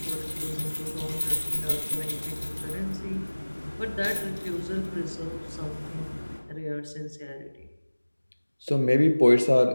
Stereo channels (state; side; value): inverted; both; correlation -1.00